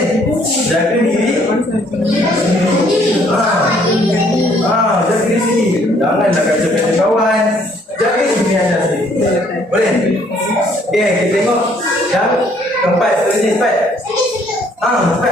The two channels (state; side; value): normal; both; correlation 0.64